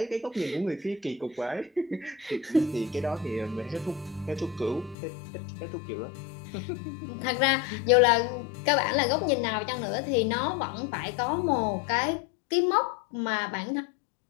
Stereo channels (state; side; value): drops out; right; at 5.0 s